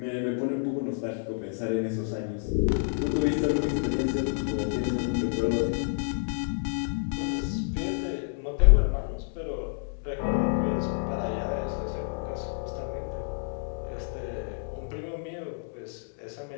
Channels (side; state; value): right; silent; 59 dB below the other